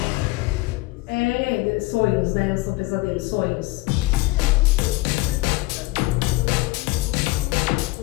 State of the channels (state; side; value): quieter; right; 21.3 dB